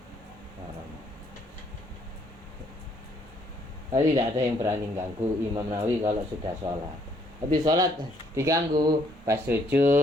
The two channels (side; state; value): both; normal; correlation 0.67